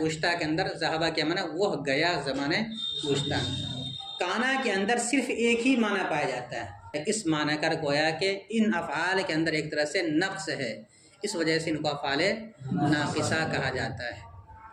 گزشتہ کے اندر ذہبہ کے معنی وہ گیا زمانہ گزشتہ۔ کانا کے اندر صرف ایک ہی معنی پایا جاتا ہے، اس معنی کر گویا کہ ان افعال کے اندر ایک طرح سے نقص ہے، اس وجہ سے ان کو افعال ناقصہ کہا جاتا ہے۔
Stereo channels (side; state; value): both; identical; correlation 1.00